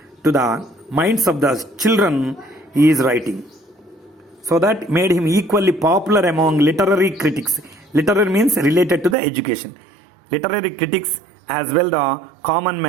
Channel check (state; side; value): drops out; left; at 9.2 s